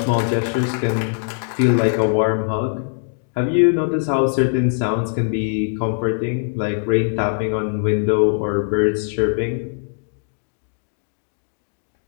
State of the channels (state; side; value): silent; right; digital silence